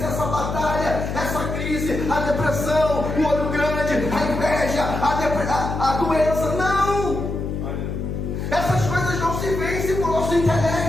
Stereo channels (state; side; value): noise; left; hum, 4 dB below the sound